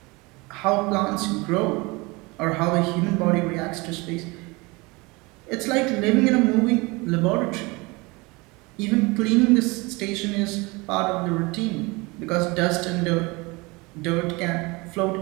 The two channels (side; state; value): left; quieter; 25.3 dB